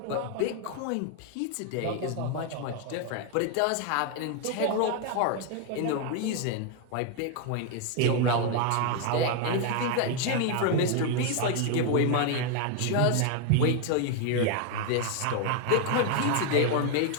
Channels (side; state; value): both; different; correlation 0.01